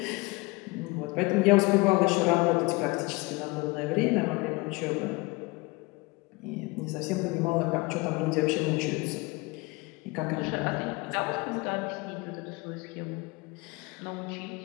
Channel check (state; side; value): quieter; right; 25.1 dB